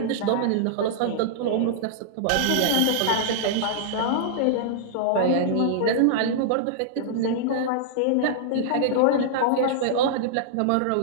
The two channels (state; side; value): different; both; correlation -0.01